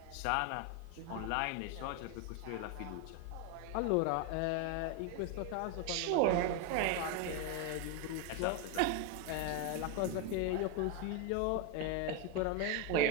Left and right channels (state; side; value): different; both; correlation 0.02